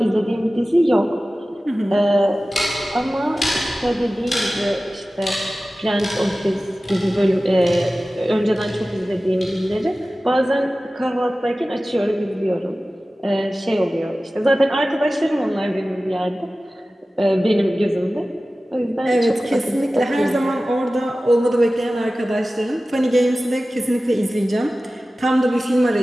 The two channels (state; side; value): normal; both; correlation 0.96